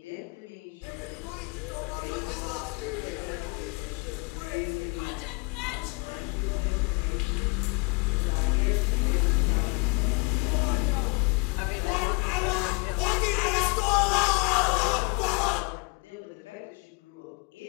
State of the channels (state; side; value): quieter; right; 31.0 dB